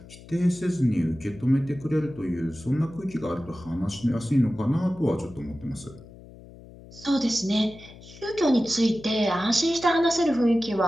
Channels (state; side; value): noise; left; hum, 19 dB below the sound